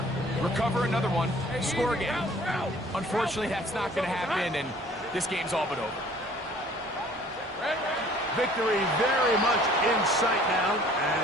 recover another one, score again. Unfortunately, that's not going to happen, and this game's all but over. Victory very much in sight now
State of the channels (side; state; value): both; normal; correlation 0.53